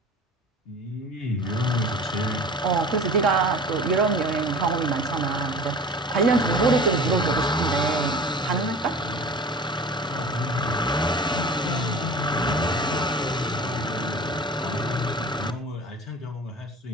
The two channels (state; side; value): normal; both; correlation 0.39